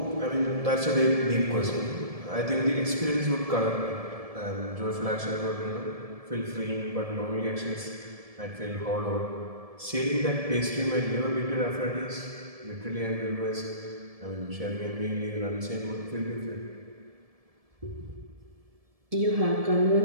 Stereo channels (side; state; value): left; late; 1.7 ms